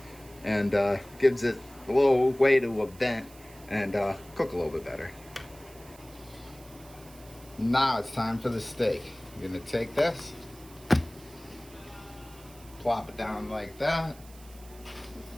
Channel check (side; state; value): right; noise; hiss, 22 dB below the sound